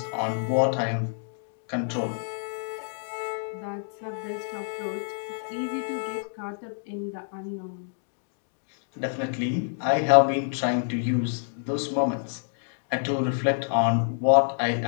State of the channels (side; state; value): right; silent; digital silence